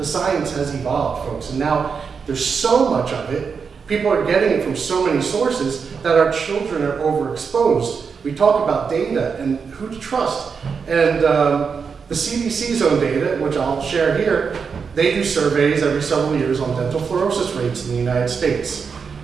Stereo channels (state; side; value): quieter; left; 5.8 dB